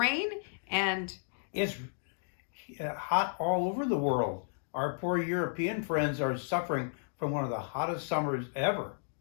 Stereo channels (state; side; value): silent; right; digital silence